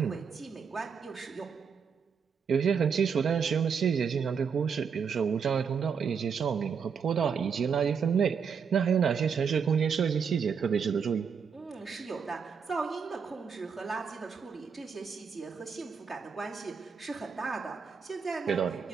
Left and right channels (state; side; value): quieter; left; 6.3 dB